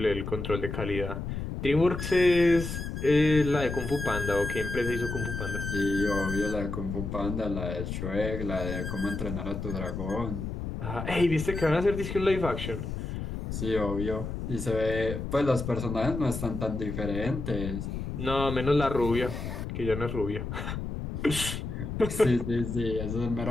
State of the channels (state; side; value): noise; left; rumble, 5 dB below the sound